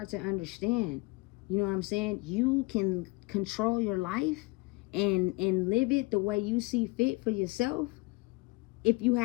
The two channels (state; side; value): quieter; right; 24.1 dB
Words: to understand. You know what I'm saying? You can control your life and live it the way you see fit for yourself if you